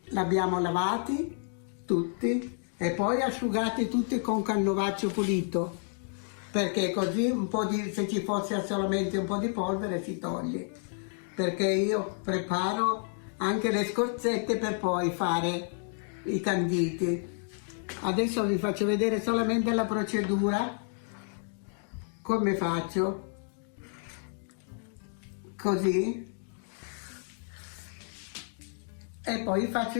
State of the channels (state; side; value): silent; right; 58 dB below the other